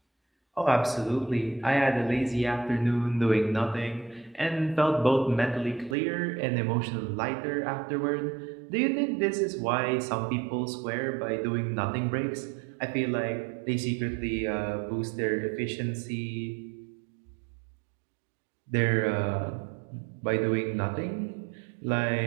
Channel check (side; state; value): left; drops out; at 6.0 s